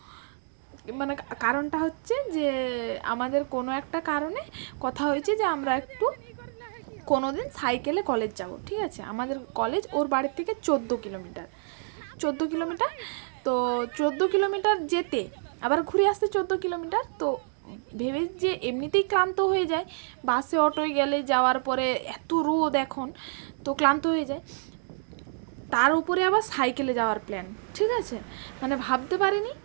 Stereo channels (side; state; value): left; silent; digital silence